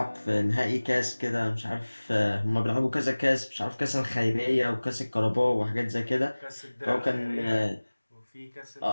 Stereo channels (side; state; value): both; inverted; correlation -1.00